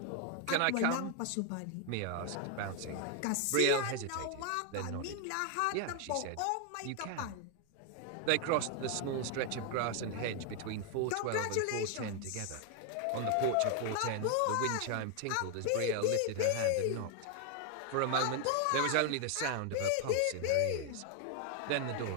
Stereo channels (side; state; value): both; different; correlation 0.00